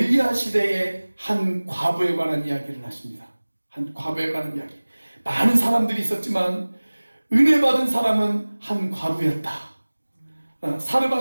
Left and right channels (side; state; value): both; inverted; correlation -1.00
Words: 시대의 한 과부에 관한 이야기를 하십니다. 한 과부에 관한 이야기. 많은 사람들이 있었지만 은혜 받은 사람은 한 과부였다.